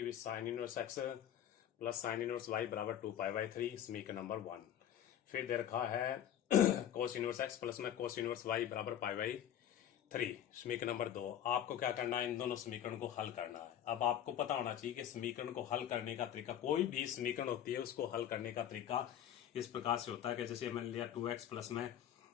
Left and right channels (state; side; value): quieter; right; 10.5 dB